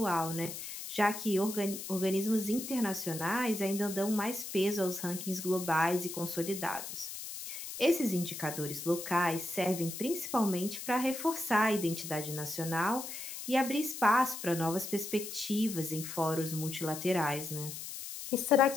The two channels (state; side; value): noise; left; hiss, 8 dB below the sound